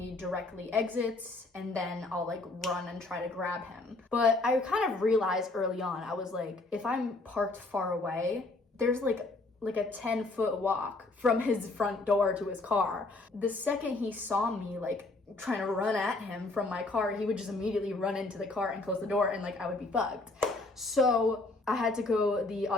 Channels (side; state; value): right; quieter; 3.2 dB